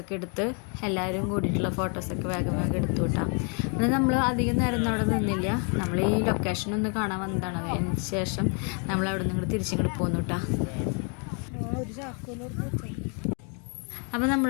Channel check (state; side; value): quieter; right; 38.2 dB